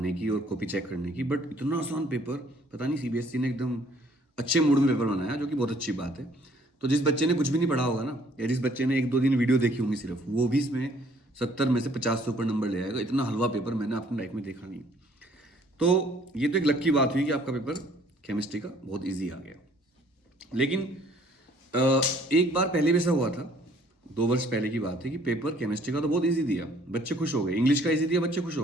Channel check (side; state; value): both; normal; correlation 0.60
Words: की और कॉपी चेक करने की, बट इतना आसान पेपर पता नहीं सीबीएसई ने एकदम अच्छे मूड में पेपर बनाया, जो कि बहुत अच्छी बात है। तो जिस बच्चे ने कुछ भी नहीं पढ़ा होगा ना, या जिस बच्चे ने 1-2 दिन वीडियो देखी होंगी सिर्फ, वो भी इसमें 70 में से 50 से ऊपर नंबर ले आएगा। इतना हलवा पेपर मैंने अपनी लाइफ में देखा नहीं। तो ये तो एक लकी बात हुई कि आपका पेपर केमिस्ट्री का बहुत ईजी आ गया। लेकिन एक बार पहले भी ऐसा हुआ था, 2 वर्ष पहले की बात है, कि पेपर केमिस्ट्री का तो बहुत इजी दिया, बच्चे खुश हो गए। इंग्लिश का इजी दिया, बच्चे खुश